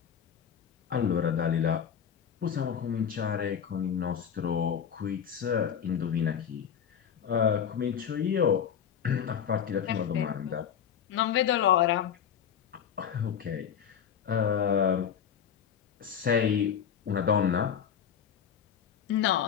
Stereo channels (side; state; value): right; quieter; 8.2 dB